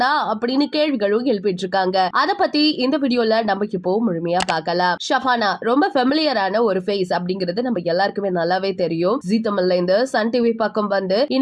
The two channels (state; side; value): identical; both; correlation 1.00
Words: அப்படின்னு கேள்விகளும் எழுப்பிட்டு இருக்காங்க. அத பத்தி இந்த வீடியோல நம்ம இப்போ முழுமையா பார்க்கலாம். ஷஃபானா ரொம்ப ஃபெமிலியரான ஒரு ஃபேஸ் அப்படிங்கிறது நம்ம எல்லாருக்குமே நல்லாவே தெரியும். ஜீ தமிழ்ல இந்த சன் டிவி பக்கம் வந்து